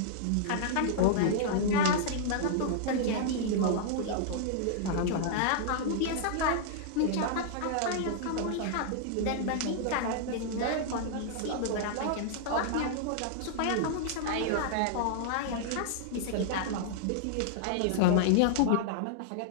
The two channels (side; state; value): both; different; correlation -0.01